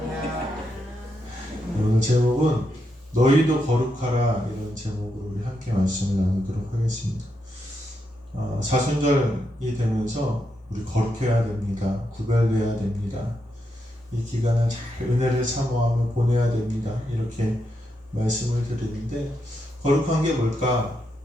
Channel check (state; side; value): normal; both; correlation 0.82